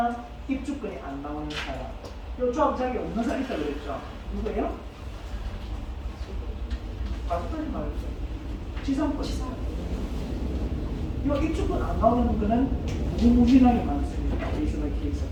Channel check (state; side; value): identical; both; correlation 1.00